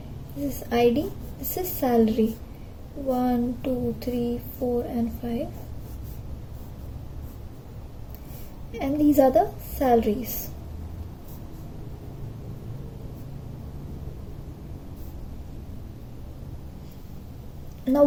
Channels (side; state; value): both; identical; correlation 1.00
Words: This is ID, this is salary 1, 2, 3, 4 and 5. And these are the salaries. Now